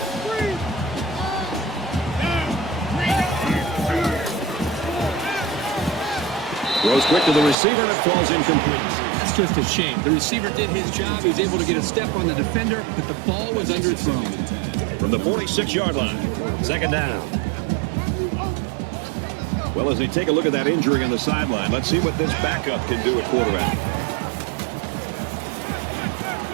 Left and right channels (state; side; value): drops out; left; at 7.6 s